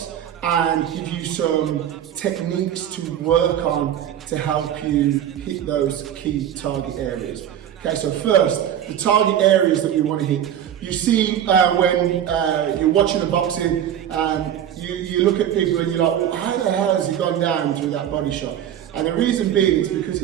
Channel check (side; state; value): left; quieter; 10.3 dB